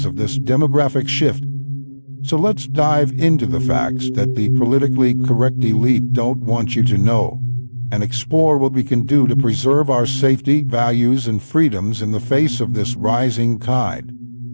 of this demographic shift. So let's dive into the facts that the politically correct elite don't want you to know, and explore what we can do to preserve our safety, values, and freedoms in the face of this rising tide.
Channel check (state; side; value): inverted; both; correlation -1.00